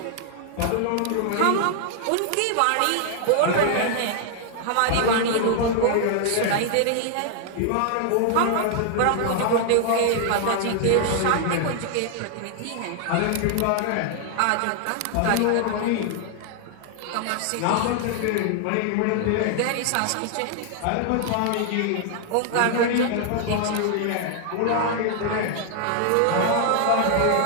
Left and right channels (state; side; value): different; both; correlation 0.00